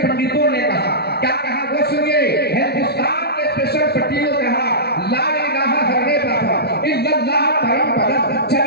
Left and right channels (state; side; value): late; right; 0.47 ms